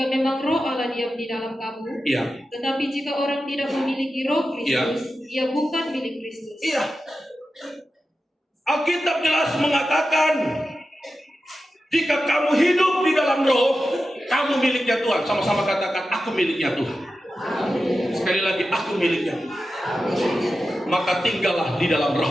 memang roh Allah diam di dalam kamu, Iya. tetapi jika orang tidak memiliki roh Kristus, ia bukan milik Kristus. Iya. Alkitab jelas mengatakan, jika kamu hidup di dalam roh, kamu miliknya Tuhan. Sama-sama katakan, aku miliknya Tuhan. Sekali lagi, aku miliknya Tuhan. Maka tinggallah di dalam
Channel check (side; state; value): both; normal; correlation 0.92